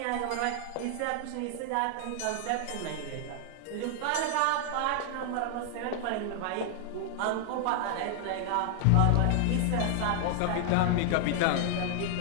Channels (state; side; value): different; both; correlation 0.00